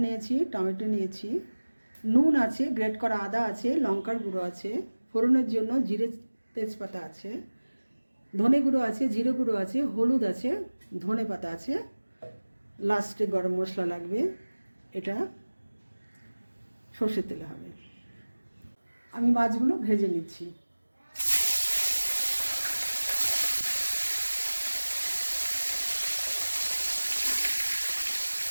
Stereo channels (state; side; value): inverted; both; correlation -1.00